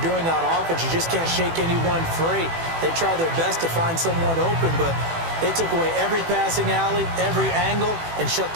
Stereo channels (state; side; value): late; left; 18 ms